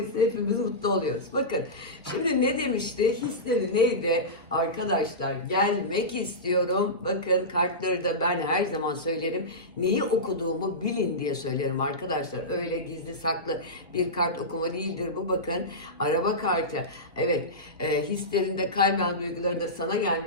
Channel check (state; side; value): normal; both; correlation -0.16